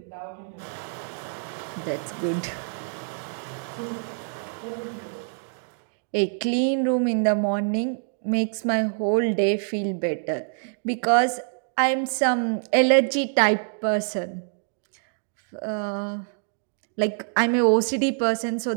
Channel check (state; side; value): silent; left; digital silence